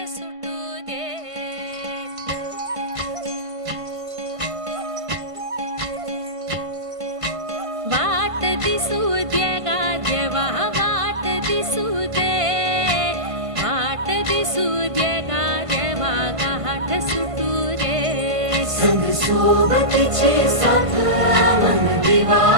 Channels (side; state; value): left; late; 1.5 ms